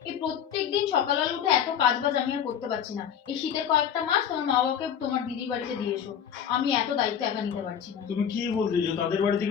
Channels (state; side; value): quieter; right; 8.6 dB